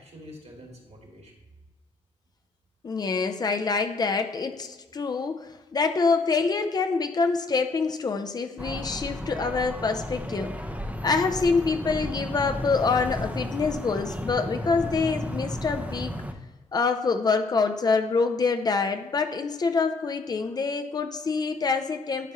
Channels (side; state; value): right; quieter; 3.9 dB